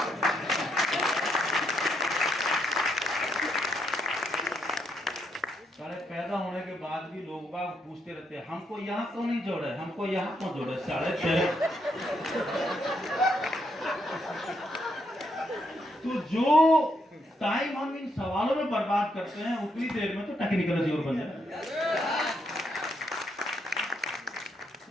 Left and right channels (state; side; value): normal; both; correlation 0.77